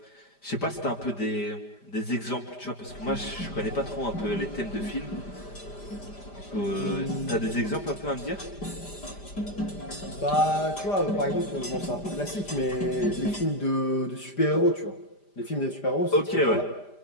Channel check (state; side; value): late; right; 5.0 ms